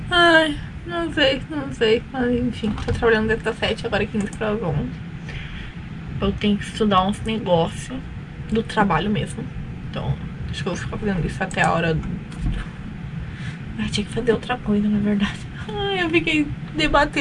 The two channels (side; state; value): both; identical; correlation 1.00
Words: Ai, não sei, mas enfim, tô trabalhando desde as 7, agora 15 para as 11. Eu tenho que estudar uns negócios do trabalho mesmo. Então, acho que eu vou ficar fazendo isso até a hora do... tinha que fazer outra coisa, na verdade. Ai, eu fiquei